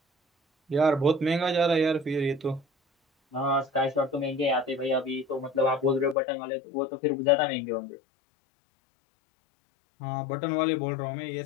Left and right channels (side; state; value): right; drops out; at 6.2 s